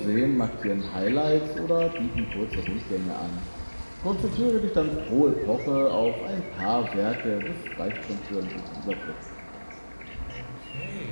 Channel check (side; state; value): both; inverted; correlation -1.00